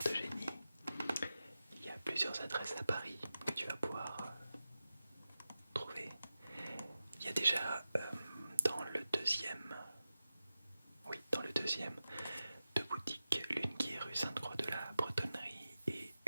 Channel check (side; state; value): both; inverted; correlation -0.93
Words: de génie, il y a plusieurs adresses à Paris que tu vas pouvoir trouver. Il y a déjà dans le deuxième, oui, dans le deuxième, deux boutiques, l'une qui est rue Sainte-Croix de la Bretonnerie et